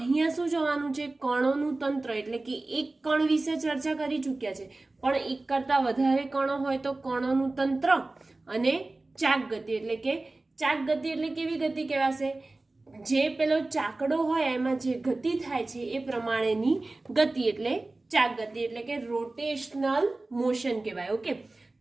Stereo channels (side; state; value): left; quieter; 3.1 dB